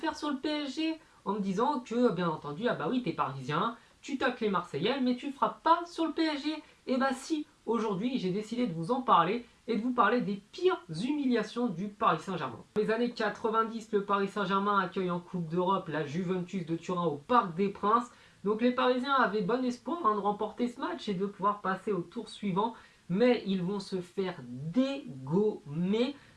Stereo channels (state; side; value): identical; both; correlation 1.00